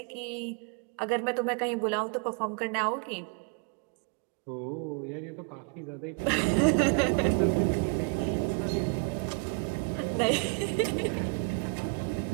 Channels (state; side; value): quieter; left; 33.5 dB